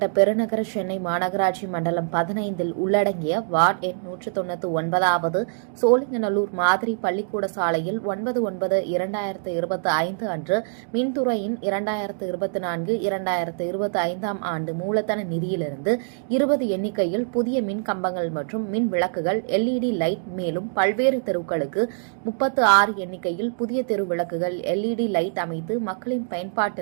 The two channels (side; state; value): left; silent; digital silence